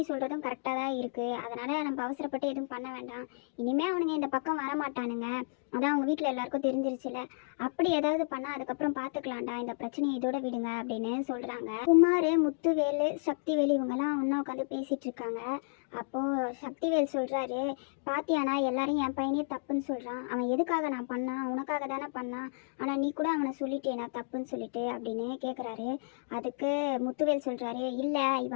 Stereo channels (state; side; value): silent; right; digital silence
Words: சொல்கிறதும் கரெக்டாக தான் இருக்குது, அதனால் நம்ம அவசரப்பட்டு எதுவும் பண்ண வேண்டாம். இனிமேல் அவனுங்க இந்த பக்கம் வரமாட்டானுங்க, அதான் அவங்க வீட்டில் எல்லாருக்கும் தெரிஞ்சிருச்சுல, அப்படி ஏதாவது பண்ணால் அதுக்கப்புறம் பார்த்துக்கலாம்டா, இந்த பிரச்சனையை இதோட விடுங்க அப்படின்னு சொல்கிறாங்க. குமார், முத்துவேலு, சக்திவேல் இவங்கெல்லாம் ஒன்றா உட்காந்து பேசிகிட்டு இருக்காங்க. அப்போது சக்திவேல் சொல்கிறாரு, பாத்தியானா எல்லாரும் என் பையனே தப்புன்னு சொல்கிறான், அவன் எதுக்காக நான் பண்ணான், உனக்காக தானே பண்ணான், ஆனால் நீ கூட அவனை சொல்லிட்டே நான் தப்புன்னு சொல்லிட்டு அப்படின்னு கேட்குறாரு. அதுக்கு முத்துவேல் சொல்கிறாரு, இல்லை